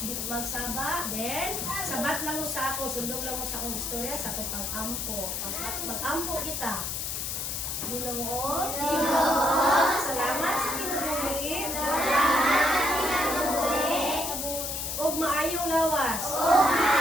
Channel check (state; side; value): noise; left; hiss, 3 dB below the sound